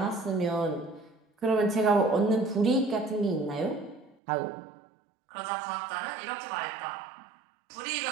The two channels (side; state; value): left; drops out; at 4.2 s